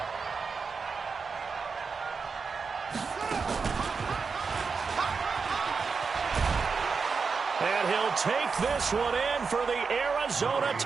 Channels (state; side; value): quieter; left; 5.1 dB